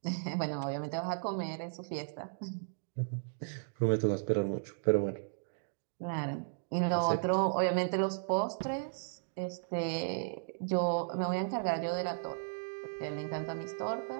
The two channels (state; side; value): silent; left; digital silence